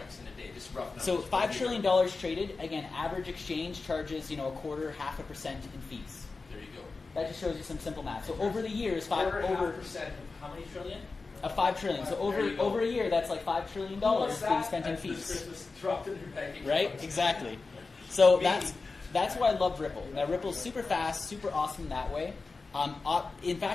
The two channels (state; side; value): quieter; right; 4.0 dB